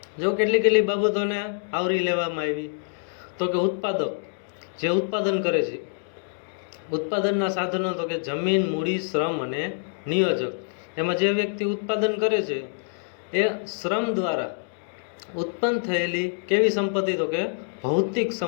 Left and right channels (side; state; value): right; silent; digital silence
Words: જો કેટલી બાબતોને આવરી લેવામાં આવી તો કે ઉત્પાદક જે ઉત્પાદન કરે છે, ઉત્પાદનના સાધનો તો કે જમીન, મૂડી, શ્રમ અને નિયોજક. એમાં જે વ્યક્તિ ઉત્પાદન કરે છે એ શ્રમ દ્વારા ઉત્પન્ન થયેલી કેવી સંપત્તિ તો કે ભૌતિક